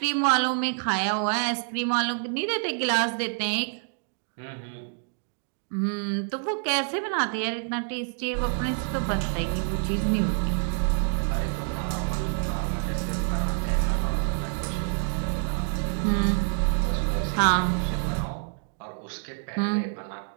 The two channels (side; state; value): left; silent; 60 dB below the other